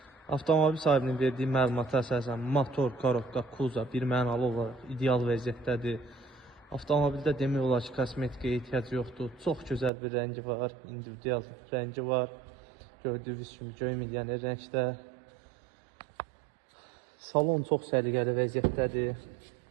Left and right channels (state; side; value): drops out; left; at 9.9 s